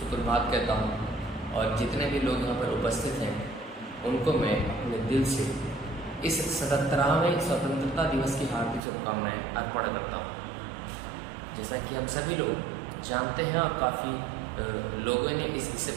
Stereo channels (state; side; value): drops out; left; at 8.8 s